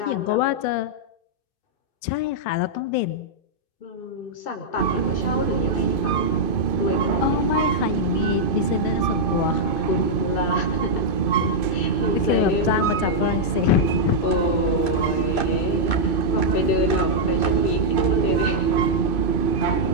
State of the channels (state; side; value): late; right; 2.5 ms